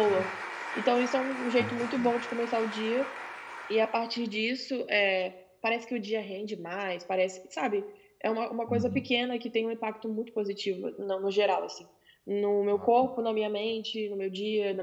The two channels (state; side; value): identical; both; correlation 1.00